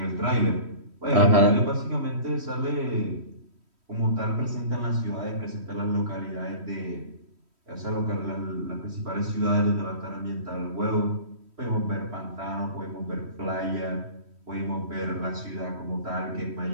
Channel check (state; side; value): late; left; 3.1 ms